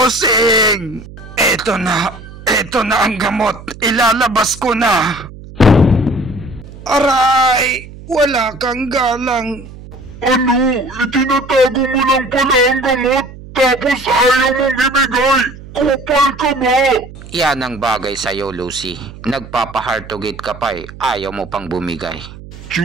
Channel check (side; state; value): right; noise; hum, 16 dB below the sound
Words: Eto na ang gamot. Ilalabas ko na. Aray! Wala kang galang. Ano? Itinatago mo lang pala ang gamot, tapos ayaw mong ibigay! Kupal ka ba? Yan ang bagay sa'yo, Lucy. Nagpapa-hard-to-get ka pa ayaw mo pang bumigay.